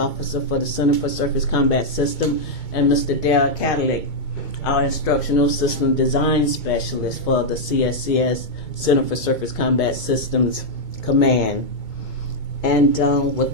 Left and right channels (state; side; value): late; right; 2.2 ms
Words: for the Center for Surface Combat System, and Mr. Dale Cadillac, our Instructional System Design Specialist for the CSCS, Center for Surface Combat Systems Command. And